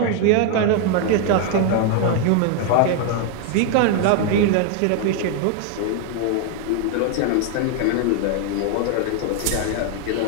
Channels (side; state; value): both; different; correlation 0.00